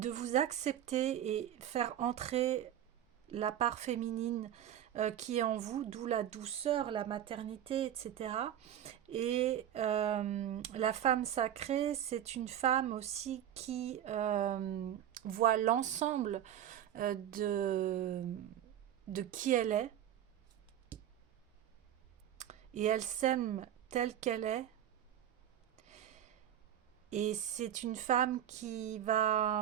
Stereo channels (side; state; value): left; quieter; 10.8 dB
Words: vous accepter et faire entrer la part féminine qui est en vous, d'où la douceur, la maternité, etc. Et la femme sacrée, c'est une femme aussi qui voit l'ensemble de qui elle est, et elle s'aime telle qu'elle est. Et c'est une femme qui